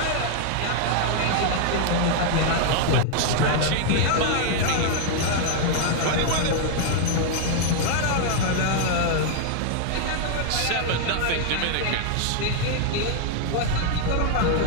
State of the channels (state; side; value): different; both; correlation 0.00